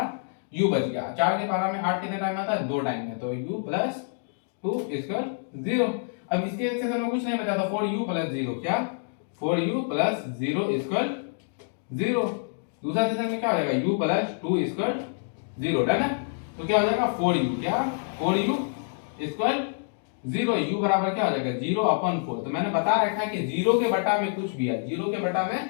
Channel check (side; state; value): right; silent; digital silence